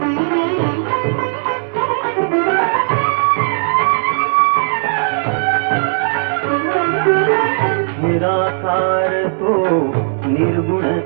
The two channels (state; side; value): silent; left; 69 dB below the other